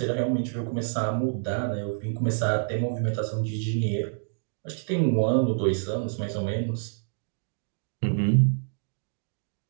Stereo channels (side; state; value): left; silent; digital silence